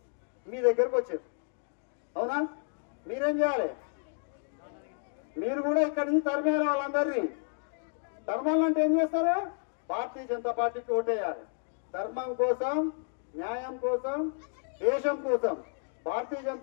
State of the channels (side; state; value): right; silent; 57 dB below the other